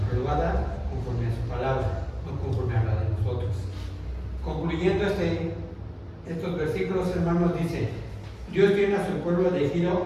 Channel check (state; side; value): identical; both; correlation 1.00